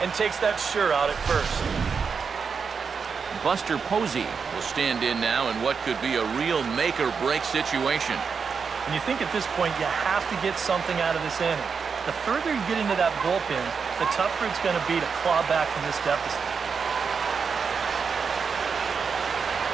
and takes that sure out at first. Buster Posey will stand in now in what could be a real make-or-break situation. And you think at this point you have to get something out of this inning. The further you get into that bullpen, the tougher it's going to be to claw back from this deficit.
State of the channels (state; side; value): quieter; left; 5.8 dB